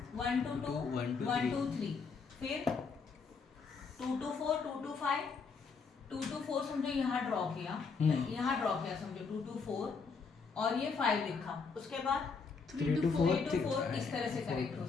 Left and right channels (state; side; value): quieter; right; 5.1 dB